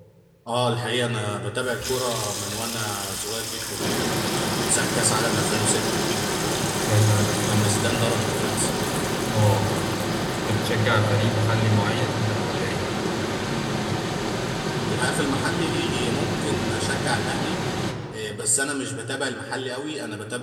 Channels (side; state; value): both; identical; correlation 1.00